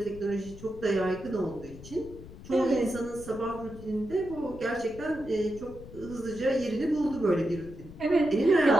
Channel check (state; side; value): noise; left; rumble, 16 dB below the sound